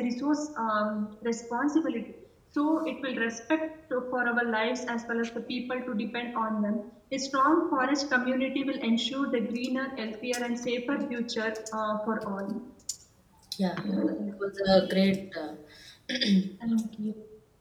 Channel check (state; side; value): identical; both; correlation 1.00